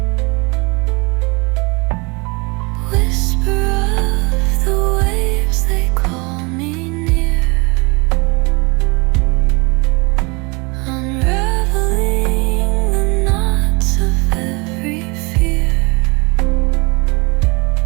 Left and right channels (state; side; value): quieter; left; 28.2 dB